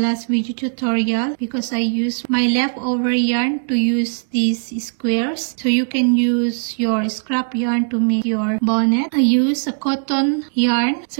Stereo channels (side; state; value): left; silent; digital silence